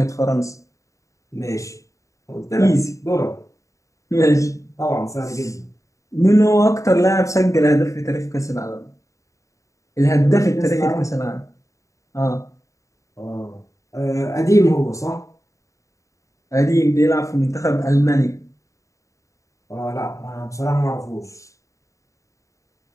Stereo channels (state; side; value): late; right; 0.15 ms